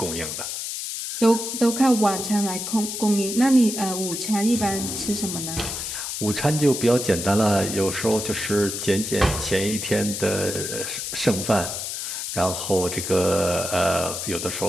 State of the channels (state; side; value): noise; left; hiss, 5 dB below the sound